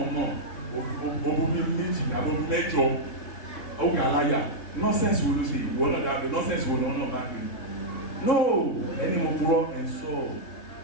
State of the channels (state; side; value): late; right; 3.3 ms